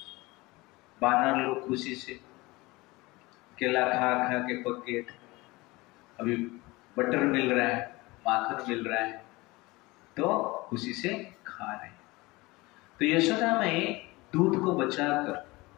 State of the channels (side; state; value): right; quieter; 22.2 dB